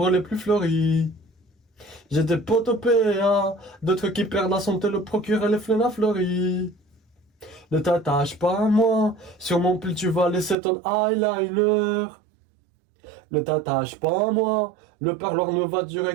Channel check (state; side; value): drops out; left; at 10.6 s